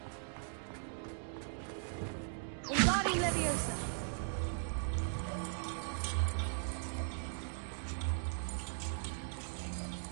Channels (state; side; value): silent; left; digital silence